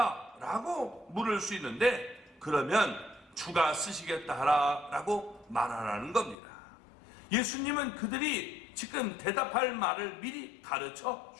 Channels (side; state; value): right; drops out; at 6.4 s